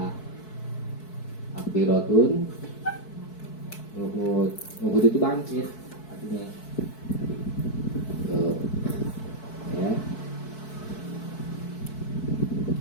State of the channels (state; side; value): late; right; 4.6 ms